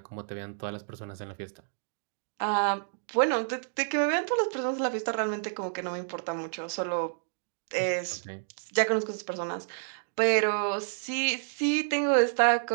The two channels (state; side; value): silent; left; digital silence